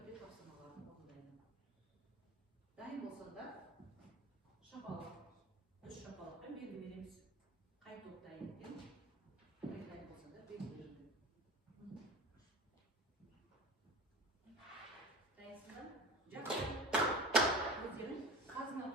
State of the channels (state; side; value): normal; both; correlation 0.34